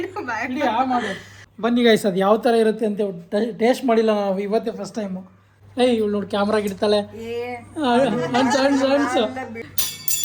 ಇಡೀ ಮಾಡು. ಬನ್ನಿ ಗೈಸ್, ಅದು ಯಾವ ಥರ ಇರುತ್ತೆ ಅಂತ ಟೇಸ್ಟ್ ಮಾಡಿಲ್ಲ ನಾವು, ಇವತ್ತೇ ಫಸ್ಟ್ ಟೈಮು. ಏಯ್ ಇವಳು ನೋಡಿ ಕ್ಯಾಮ್ರಾಗ ಇಡ್ತಾಳೆ. ಅನ್ಸು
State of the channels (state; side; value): identical; both; correlation 1.00